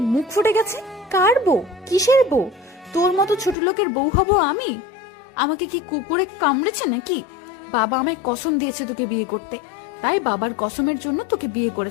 মুখ ফুটে গেছে। কার বউ? কিসের বউ? তোর মতো ছোট লোকের বউ হব আমি? আমাকে কি কুকুরে কামড়েছে নাকি? বাবা আমায় কসম দিয়েছে তোকে বিয়ে করতে, তাই বাবার কসমের জন্য তোকে বিয়ে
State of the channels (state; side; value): drops out; right; at 3.6 s